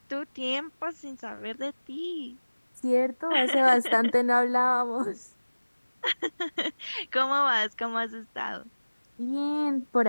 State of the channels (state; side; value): inverted; both; correlation -1.00